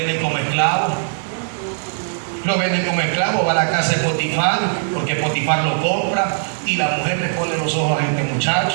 como esclavo. Lo venden como esclavo, va a la casa de Potifar, porque Potifar lo compra, y la mujer le pone los ojos a este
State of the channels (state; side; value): silent; left; 66 dB below the other